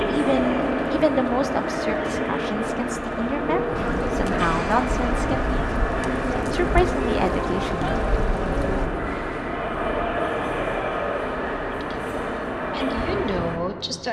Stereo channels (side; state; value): both; identical; correlation 1.00